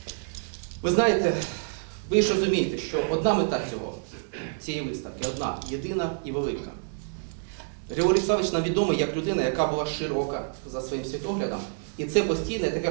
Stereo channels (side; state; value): left; silent; digital silence